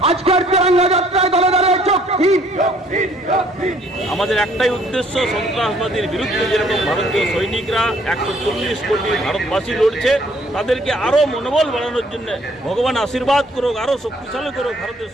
আজকের তিরঙ্গা যাত্রায় দলে দলে চোখ দিন। আমাদের একটাই উদ্দেশ্য, সন্ত্রাসবাদীর বিরুদ্ধে যেরকম ভারতীয় সৈনিকরা 140 কোটি ভারতবাসী লড়ছে, তাদেরকে আরো মনোবল বাড়ানোর জন্য ভগবান আশীর্বাদ করুক, আরো শক্তিশালী করুক ভারতের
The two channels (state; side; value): normal; both; correlation 0.61